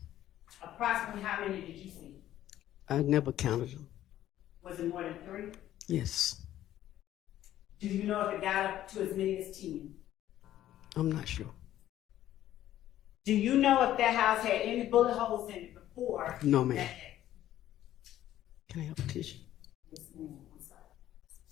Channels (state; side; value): quieter; right; 12.8 dB